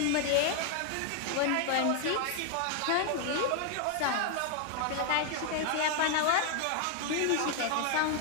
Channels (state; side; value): different; both; correlation 0.00